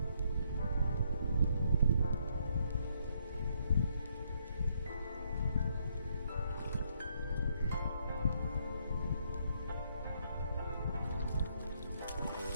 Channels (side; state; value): both; inverted; correlation -0.72